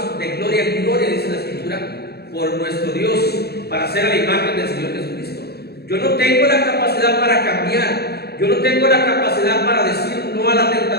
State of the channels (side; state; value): right; late; 0.47 ms